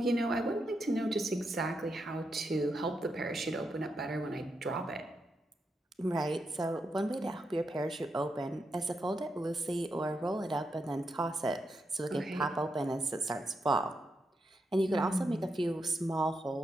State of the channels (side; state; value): both; normal; correlation 0.84